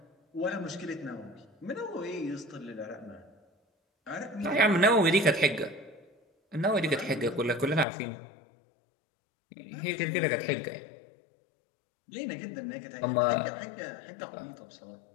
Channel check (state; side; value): drops out; right; at 7.9 s